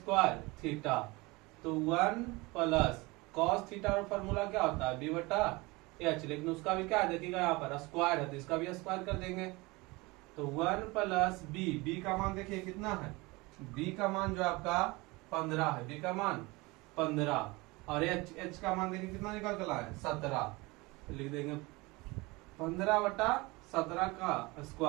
थीटा। तो 1 प्लस cos थीटा का फॉर्मूला क्या होता है b बटा h, लेकिन उसका भी क्या है देखिएगा यहाँ पर स्क्वायर है तो इसका भी स्क्वायर कर देंगे। तो 1 प्लस बी का मान देखिए कितना है, बी का मान जो आपका 15 है, बी का मान 15 और एच का मान देखिए कितना निकल कर है 17। तो लिख देंगे 15/17 का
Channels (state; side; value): quieter; left; 23.8 dB